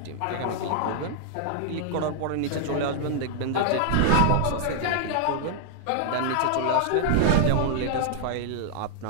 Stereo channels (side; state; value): both; different; correlation -0.01